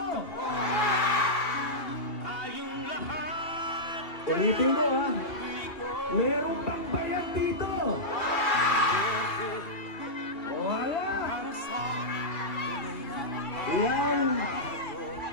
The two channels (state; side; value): late; right; 2.8 ms